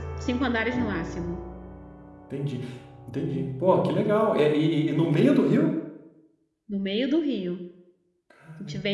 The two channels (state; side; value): identical; both; correlation 1.00